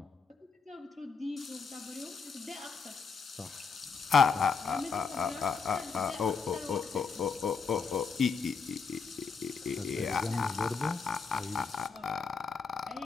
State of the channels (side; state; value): right; quieter; 5.3 dB